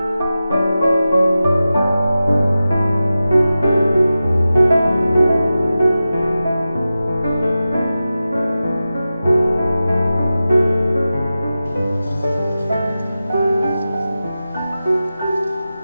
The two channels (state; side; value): inverted; both; correlation -0.94